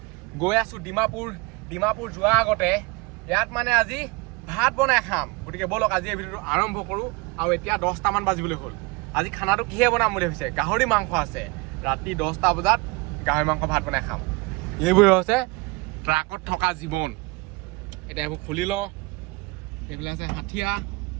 গৈ আছো ডিমাপুৰ যোৱাৰ আগতে ইয়াত মানে আজি ভাত বনাই খাম। গতিকে বলক আজি এই ভিডিঅ'টো আৰম্ভ কৰোঁ। আৰু এতিয়া 10টামান বাজিবলৈ হ'ল। আজি খানাটো কিহে বনাম বুলি ভাবিছে? গাহৰি মাংস আছে। ৰাতি 10টা বজাত গাহৰি মাংস ভাত বনাই খাম। এইবোৰে হৈছে ট্ৰাকত থকা জীৱন। এতিয়া এইবোৰ খুলি লওঁ। এইফালে আছে হাঠিয়া,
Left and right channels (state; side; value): quieter; left; 25.6 dB